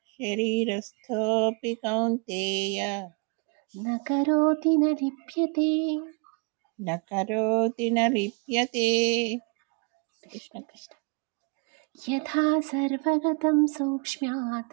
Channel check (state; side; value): quieter; left; 33.1 dB